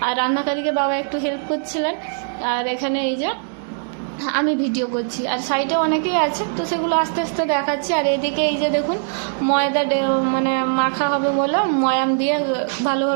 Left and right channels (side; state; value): left; silent; digital silence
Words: আর রান্নাকারীকে বাবা একটু হেল্প করছিলেন। আর এখানে এই যে আমি ভিডিও করছি, আর সাইডে অনেকেই আছে, তো সেগুলো আস্তে আস্তে দেখাচ্ছি। আর এদিকে এই যে দেখুন, ময়দা মানে মাখা হবে বলে ময়াম দিয়ে